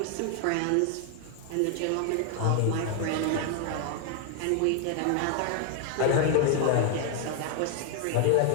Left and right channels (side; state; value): both; different; correlation 0.00